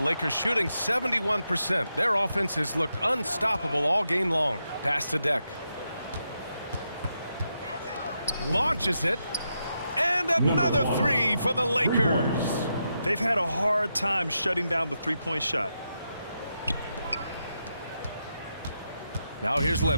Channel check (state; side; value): inverted; both; correlation -0.85